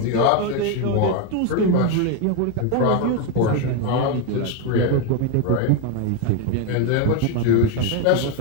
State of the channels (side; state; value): both; different; correlation 0.02